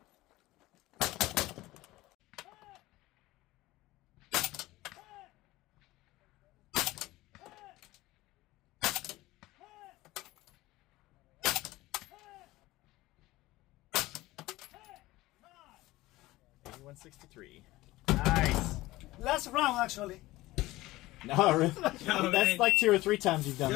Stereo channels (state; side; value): quieter; right; 18.4 dB